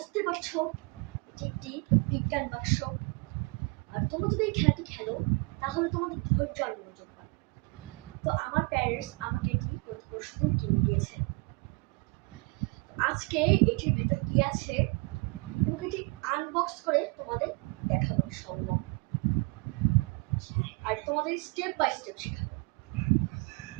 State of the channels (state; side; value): quieter; left; 29.2 dB